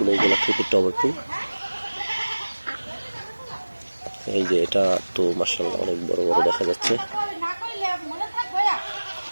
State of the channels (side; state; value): both; inverted; correlation -1.00